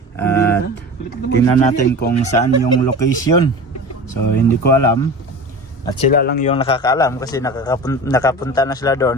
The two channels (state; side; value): normal; both; correlation 0.34